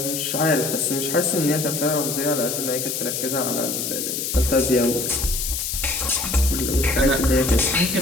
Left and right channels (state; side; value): noise; left; hiss, 3 dB below the sound